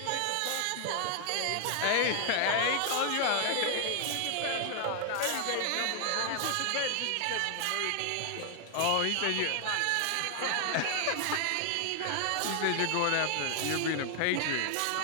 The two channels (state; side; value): different; both; correlation 0.00